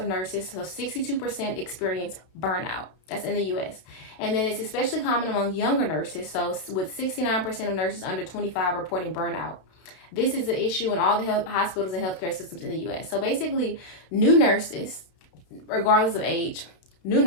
nurses, so 62%, experience burnout. That's in the U.S. And then it's especially common among younger nurses. So with 69% of nurses under 25 reporting burnout. This is an issue in all the hospitals and healthcare systems in the U.S. So basically, new nurses, regardless of age,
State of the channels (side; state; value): right; late; 32 ms